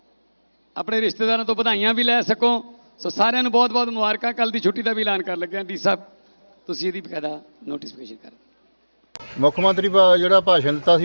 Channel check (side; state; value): both; inverted; correlation -1.00